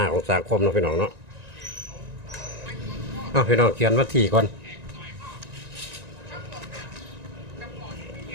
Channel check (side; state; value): left; late; 1.9 ms